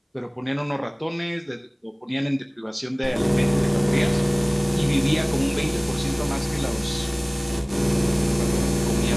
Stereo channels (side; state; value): both; identical; correlation 1.00